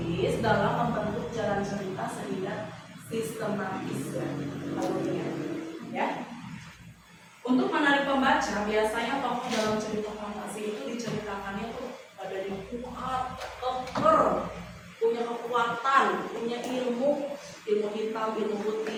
dalam membentuk jalan cerita sehingga sistematis alurnya. Ya. Untuk menarik pembaca, biasanya tokoh dalam cerita fantasi itu diceritakannya tuh badannya kuat, keker, punya kekuatan, punya ilmu hitam, ilmu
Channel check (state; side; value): identical; both; correlation 1.00